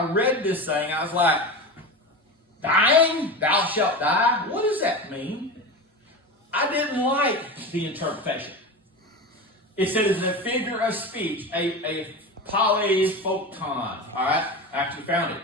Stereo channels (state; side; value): normal; both; correlation 0.26